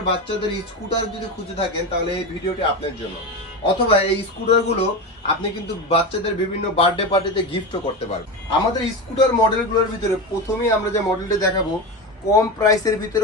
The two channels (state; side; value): normal; both; correlation 0.21